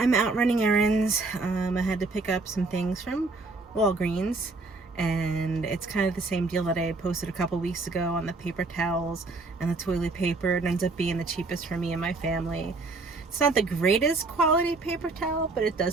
out running errands. I had to pick up some things from Walgreens. And it's kind of the same deal that I posted a couple weeks ago on the paper towels and the toilet paper. It ends up being the cheapest for me and my family. It's not the greatest quality paper towel, but it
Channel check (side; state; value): left; quieter; 3.5 dB